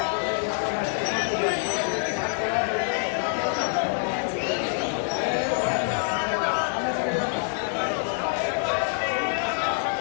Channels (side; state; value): right; silent; 61 dB below the other